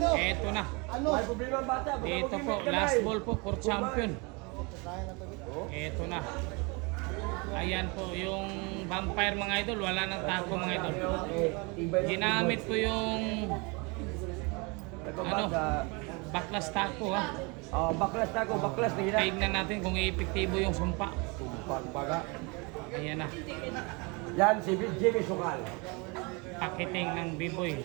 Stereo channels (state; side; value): quieter; left; 29.2 dB